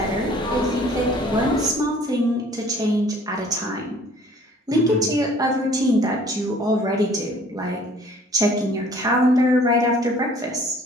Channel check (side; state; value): both; normal; correlation 0.54